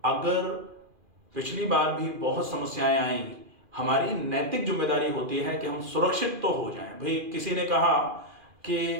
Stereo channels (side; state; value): left; late; 2.4 ms